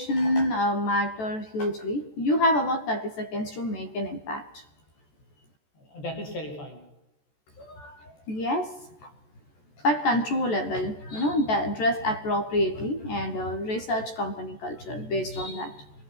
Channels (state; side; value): late; right; 14 ms